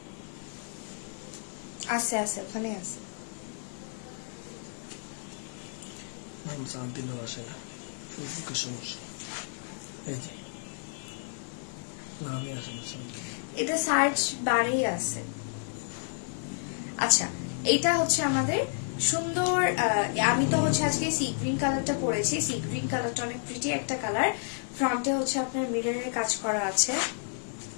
আছে আছে, ওখানে আছে। নাম সাথ দিলেও আসে না, ফেসবুকের সমস্যা। এই যে নামই আসে না, এটা সার্চ বারেই আছে। আচ্ছা, এটা হচ্ছে আমাদের সুন্দর। আমি তো হচ্ছে আজকে সি গ্রিন কালারটা পরেছি। সি গ্রিন কালারটা অনেক প্রিটি একটা কালার। ফ্রন্টে হচ্ছে আপনার মিররের কাজ করা আছে।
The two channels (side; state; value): right; silent; 57 dB below the other